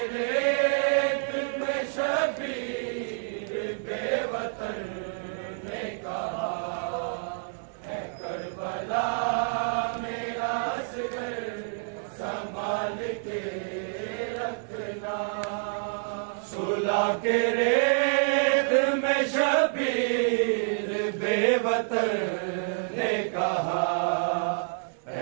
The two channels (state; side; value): silent; left; digital silence